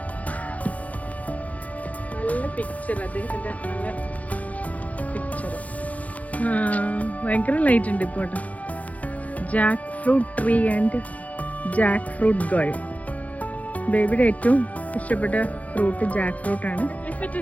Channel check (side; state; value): right; late; 0.071 ms